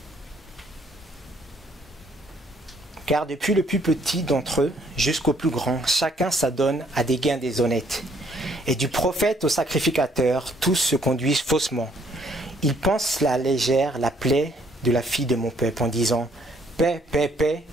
Car depuis le plus petit d'entre eux jusqu'au plus grand, chacun s'adonne à des gains déshonnêtes. Et du prophète au sacrificateur, tous se conduisent faussement. Ils pensent la légère la plaie de la fille de mon peuple en disant « Paix, paix, paix,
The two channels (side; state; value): both; normal; correlation 0.65